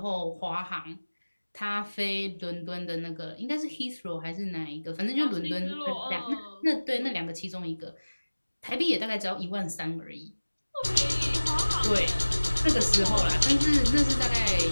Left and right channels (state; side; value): inverted; both; correlation -1.00